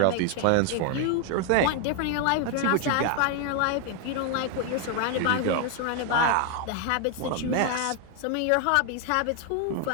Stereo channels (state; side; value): different; both; correlation 0.00